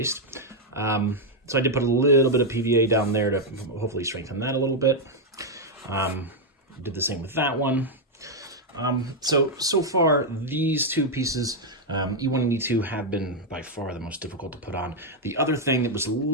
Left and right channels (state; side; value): normal; both; correlation 0.00